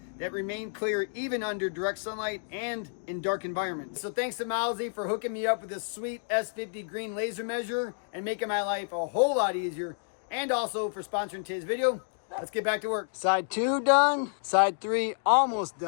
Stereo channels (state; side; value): silent; right; digital silence